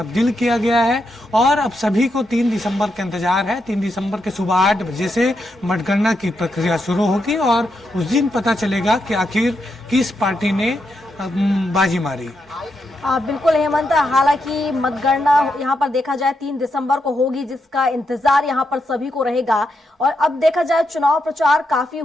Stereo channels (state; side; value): normal; both; correlation 0.83